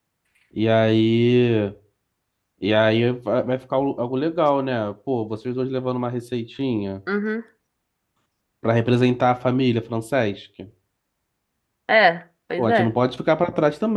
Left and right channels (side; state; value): both; identical; correlation 1.00